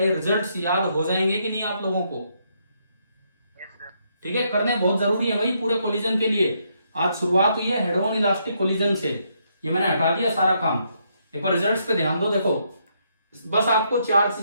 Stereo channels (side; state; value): both; inverted; correlation -0.75